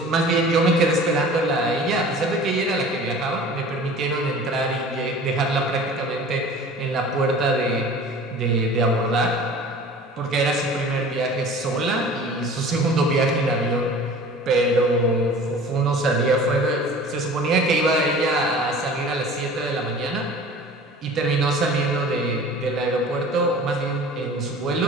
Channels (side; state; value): both; normal; correlation 0.43